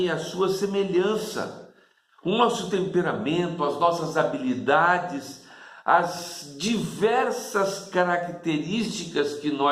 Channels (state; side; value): identical; both; correlation 1.00